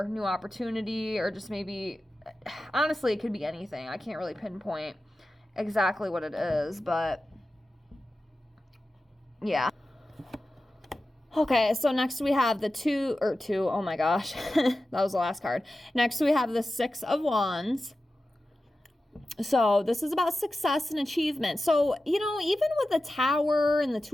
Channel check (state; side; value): normal; both; correlation 0.93